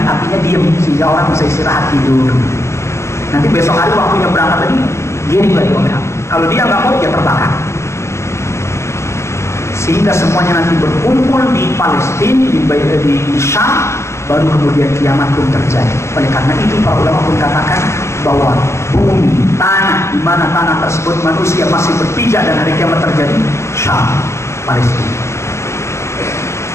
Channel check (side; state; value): right; late; 0.13 ms